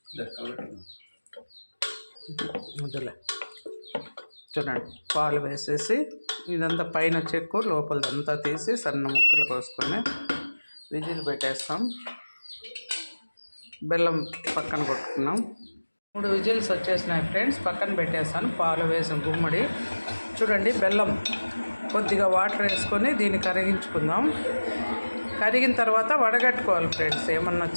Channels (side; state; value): both; inverted; correlation -1.00